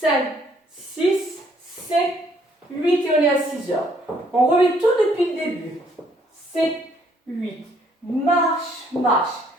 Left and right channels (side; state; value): both; normal; correlation 0.66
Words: 6, 7, 8 et on est à 6 heures. On remet tout depuis le début. 7, 8, marche, marche,